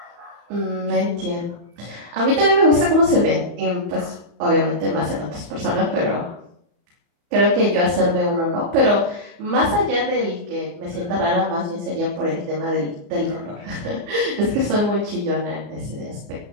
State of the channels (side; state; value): left; late; 34 ms